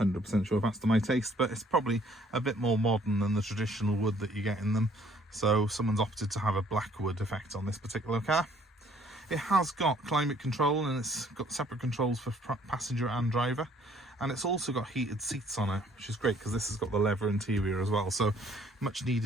sure if that's to my taste, but it's probably a bit more modern than the traditional wood that you get in them. So someone's opted to have a black wood effect on this particular car. It has got climate control, and it's got separate controls for passenger and driver, and it's also got heated seats on it, which is great because this has got the leather interior as well, so much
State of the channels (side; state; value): both; normal; correlation 0.61